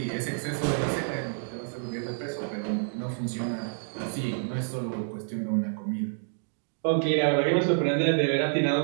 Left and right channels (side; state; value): left; silent; digital silence